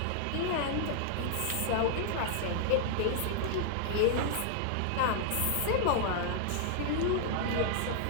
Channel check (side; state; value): both; different; correlation -0.01